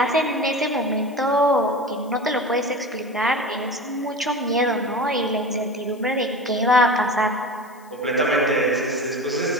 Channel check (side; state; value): left; noise; hiss, 27 dB below the sound